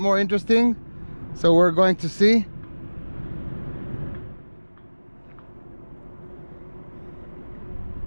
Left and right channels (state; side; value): inverted; both; correlation -1.00